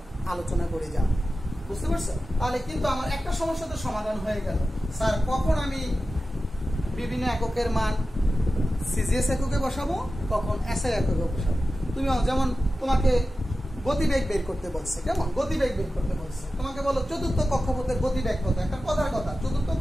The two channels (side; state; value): both; normal; correlation 0.93